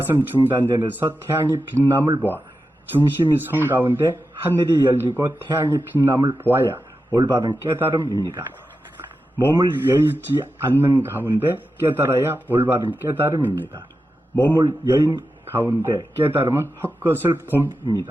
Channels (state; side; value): normal; both; correlation 0.91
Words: 중단전에서 태양이 빛남을 보아 중심이 선 가운데 하늘이 열리고 태양이 빛남을 보아야 올바른 깨달음입니다. 몸을 여의지 않는 가운데 깨달아야 올바른 깨달음입니다. 몸을 여인 가운데 깨달음은 헛것을